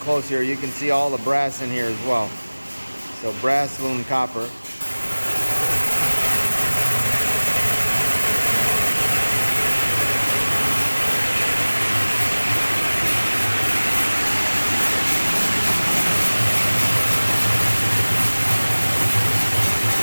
here, you can see all the brass in here as well. So brass, aluminum, copper.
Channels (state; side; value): inverted; both; correlation -1.00